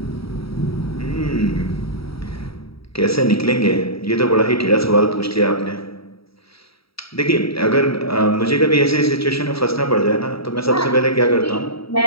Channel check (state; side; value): late; right; 0.75 ms